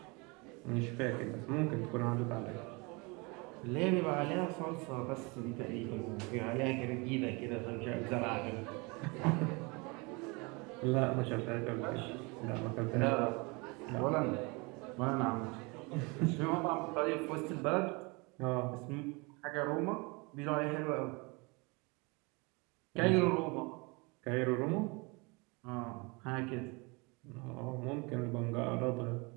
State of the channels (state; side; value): quieter; left; 28.2 dB